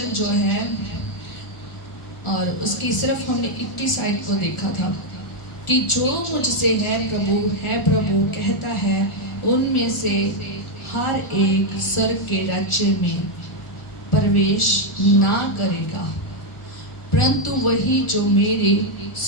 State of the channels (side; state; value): right; late; 1.4 ms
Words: जो है, और उसकी सिर्फ हमने 21 साइड को देखा था कि जो मुझसे है प्रभु कहता है, उनमें से हर एक स्वर्ग के राज्य में प्रवेश ना करेगा, परंतु वही जो मेरे